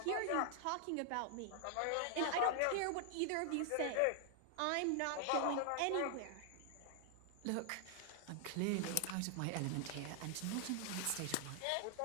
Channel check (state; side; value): different; both; correlation 0.00